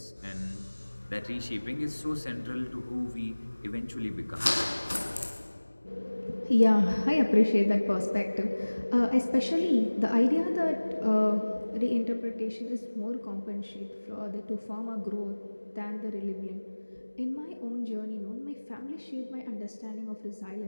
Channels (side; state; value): both; inverted; correlation -1.00